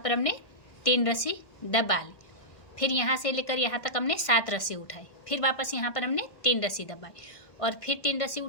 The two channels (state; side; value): late; right; 1.6 ms